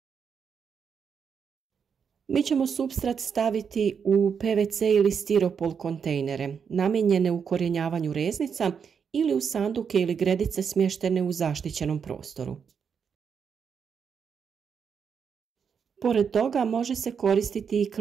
Mi ćemo supstrat staviti u PVC ili stiropol kontejnere, namijenjene ukorijenjavanju reznica ili u sanduke ili gredice smještene u zaštićenom prostoru. Pored toga može se koristiti i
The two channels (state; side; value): quieter; left; 6.7 dB